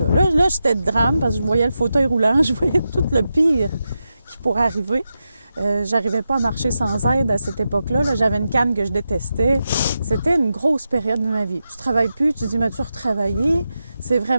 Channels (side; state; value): both; inverted; correlation -0.89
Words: Là, j'étais de drame parce que je voyais le fauteuil roulant, je voyais tout le pire qui pourrait arriver. J'arrivais pas à marcher sans aide à cette époque-là. Là, j'avais une canne que je détestais. C'était une grosse période de ma vie. Tu travailles plus, tu dis, mais tu retravailler. C'est